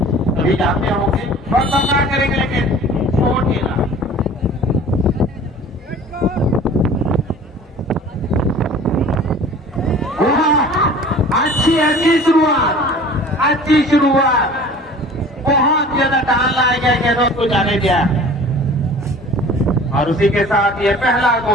अभी जाते होंगे और सामना करेंगे, लेकिन छोटेलाल अच्छी शुरुआत, बहुत ज्यादा टाल लाया गया गेंदों को जाने दिया, और उसी के साथ ये पहला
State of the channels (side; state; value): both; normal; correlation 0.45